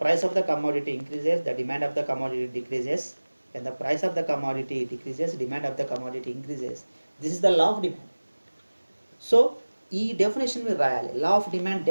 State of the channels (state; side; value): inverted; both; correlation -1.00